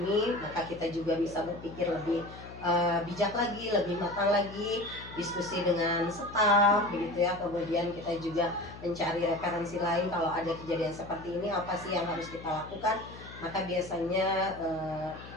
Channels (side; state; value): left; noise; hum, 15 dB below the sound